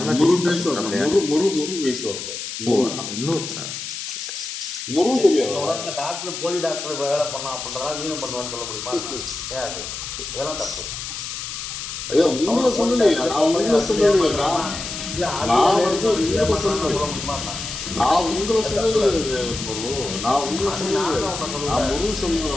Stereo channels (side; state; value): left; noise; hiss, 7 dB below the sound